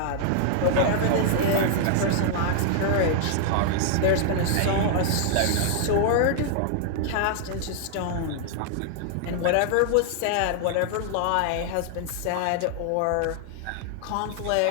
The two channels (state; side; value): different; both; correlation 0.00